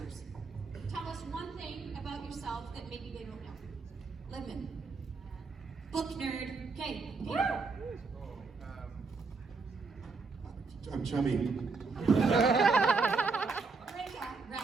Tell us one thing about yourself that maybe they don't know. Libman. Book nerd. Okay. I'm chubby.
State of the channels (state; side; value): quieter; left; 4.4 dB